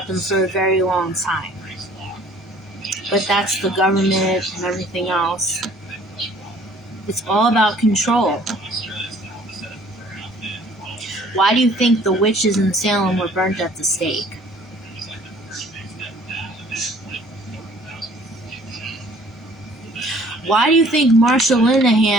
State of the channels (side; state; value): both; normal; correlation 0.55